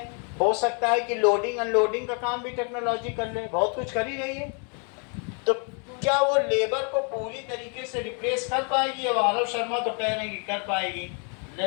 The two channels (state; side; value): quieter; right; 38.8 dB